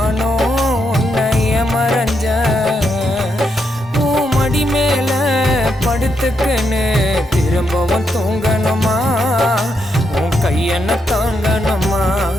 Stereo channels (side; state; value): both; normal; correlation 0.80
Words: உன்னைய மறைஞ்ச. மடி மேல படுத்துக்குன்னு திரும்பவும் தூங்கணுமா? உன் கையென்ன தாங்கணுமா?